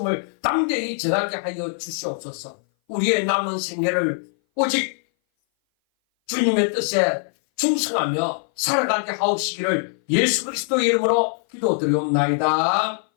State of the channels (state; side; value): silent; right; 59 dB below the other